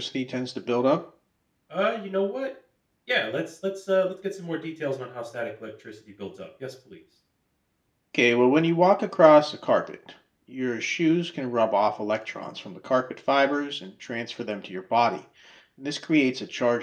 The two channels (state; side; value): identical; both; correlation 1.00